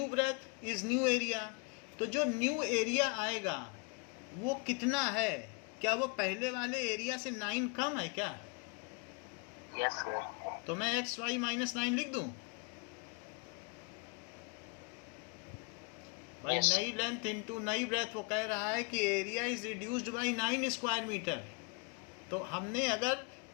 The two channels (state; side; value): quieter; right; 32.5 dB